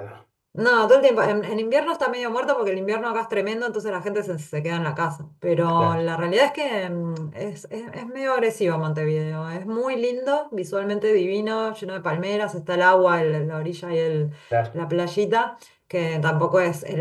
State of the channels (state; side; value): identical; both; correlation 1.00